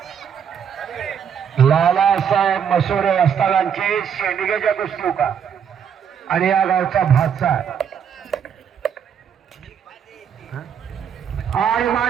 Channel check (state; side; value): quieter; left; 7.8 dB